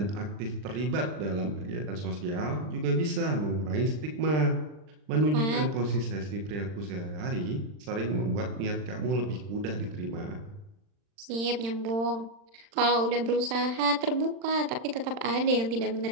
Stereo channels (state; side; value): late; left; 39 ms